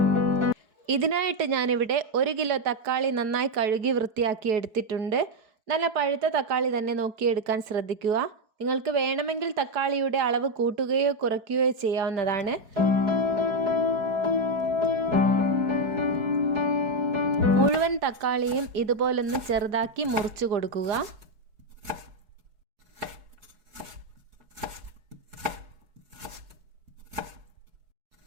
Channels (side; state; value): left; late; 4.7 ms